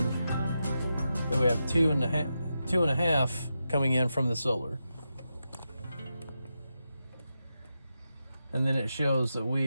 we have 2.5 coming in from the solar. And then it shows that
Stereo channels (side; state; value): both; inverted; correlation -0.88